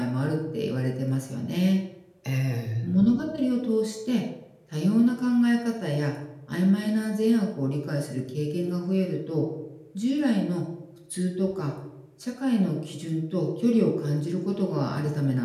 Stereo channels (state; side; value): identical; both; correlation 1.00